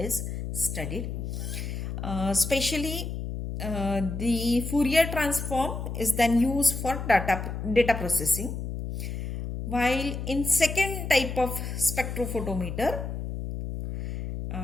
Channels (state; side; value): noise; left; hum, 5 dB below the sound